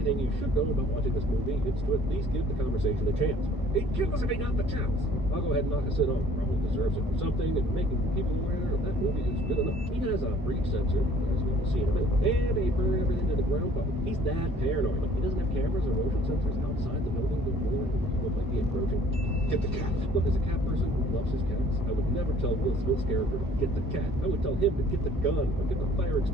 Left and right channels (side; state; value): both; normal; correlation 0.55